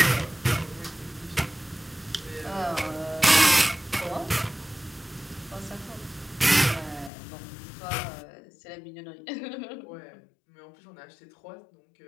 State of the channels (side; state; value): right; drops out; at 7.1 s